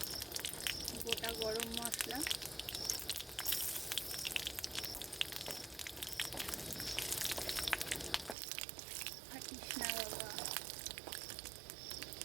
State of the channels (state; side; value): drops out; left; at 8.3 s